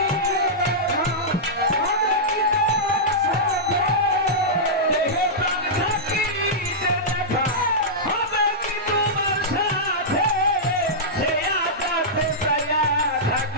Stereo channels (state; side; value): normal; both; correlation -0.12